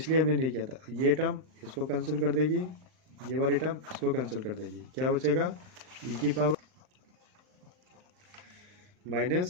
हमने नहीं किया था, ये टर्म इसको कैंसिल कर देगी, ये वाली टर्म इसको कैंसिल कर देगी, क्या बचेगा, e की पावर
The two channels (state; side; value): late; left; 39 ms